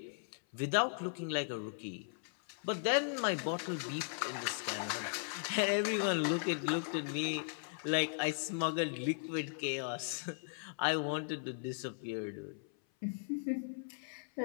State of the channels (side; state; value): right; silent; 53 dB below the other